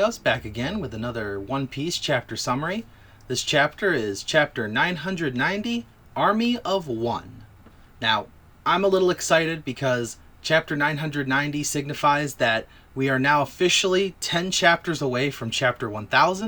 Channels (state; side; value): identical; both; correlation 1.00